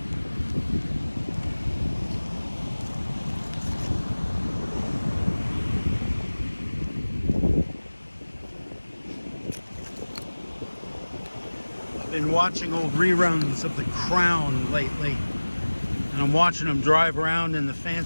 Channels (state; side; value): inverted; both; correlation -1.00